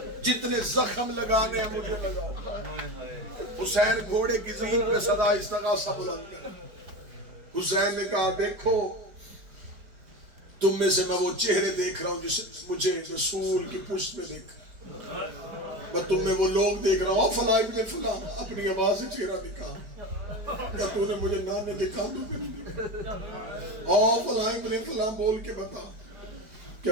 جتنے زخم لگانے ہیں مجھے لگاؤ۔ حسین گھوڑے کی زین پہ صدا استغاثہ بلند کر، حسین نے کہا دیکھو تم میں سے میں وہ چہرے دیکھ رہا ہوں جسے مجھے رسول کی پشت میں دیکھا، میں تم میں وہ لوگ دیکھ رہا ہوں، فلاں ابن فلاں، اپنی آواز سے چہرہ نکال، کیا تو نے مجھے نانے دکھا دو فلاں ابن فلاں بول کے بتا کیا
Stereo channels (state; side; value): late; left; 4.9 ms